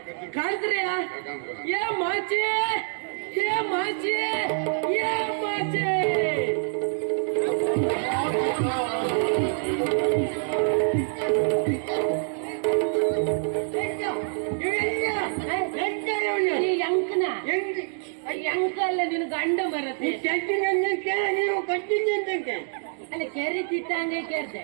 ಕರ್ಸ್ರಿ. ಏ ಮಾಚೆ ಏ ಮಾಚೆ ಏ ಮಾಚೆ. ಎಂಕ ಅಲ್ಲ ನಿನ್ ಗಂಡ ಬರತ್ತೆ. ನೀವು ಕಟ್ಟಿದ್ದೆ ಅಲ್ಲ ಕೆರಿ ತಿತ್ತಂಗೆ ಕೇಳ್ದೆ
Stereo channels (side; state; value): left; silent; 60 dB below the other